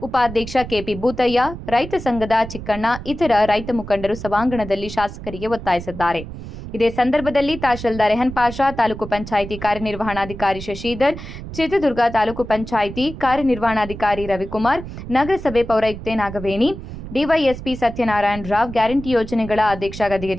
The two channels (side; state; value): right; noise; rumble, 11 dB below the sound